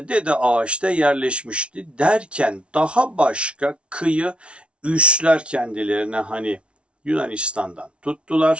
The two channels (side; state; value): left; late; 0.059 ms